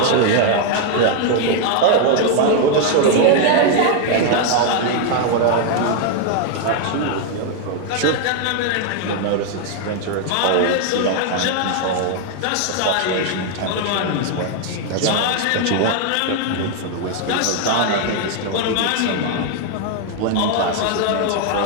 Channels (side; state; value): both; different; correlation 0.00